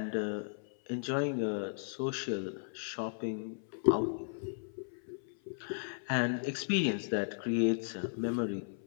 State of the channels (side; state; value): right; silent; 54 dB below the other